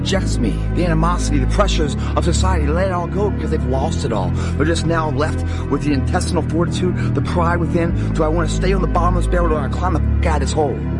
me? The animosity, the pressures of society, let it all go because they've lost it all. They're just now left with the intestinal fortitude, the pride within. Do I want to stay on the bottom of this barrel or do I want to climb the f*** out of this hole?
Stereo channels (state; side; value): identical; both; correlation 1.00